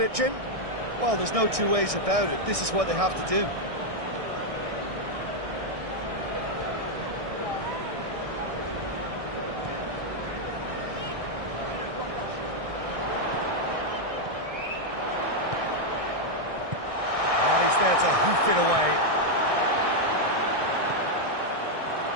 Jim? Well, there's no two ways about it. This is what they have to do. Oh, he's there to hoof it away.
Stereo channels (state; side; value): late; left; 1.6 ms